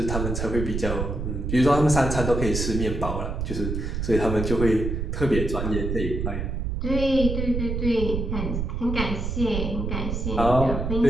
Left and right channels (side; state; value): right; noise; rumble, 2 dB below the sound